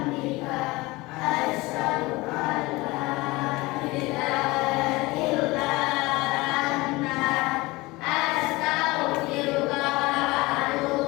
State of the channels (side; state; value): right; quieter; 21.9 dB